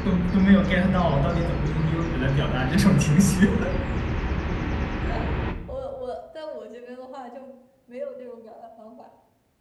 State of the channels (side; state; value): both; identical; correlation 1.00